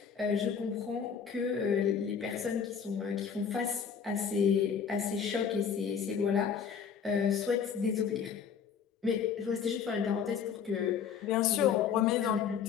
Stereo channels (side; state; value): right; quieter; 7.1 dB